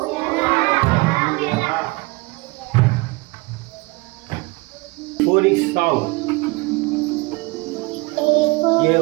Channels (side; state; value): left; quieter; 25.1 dB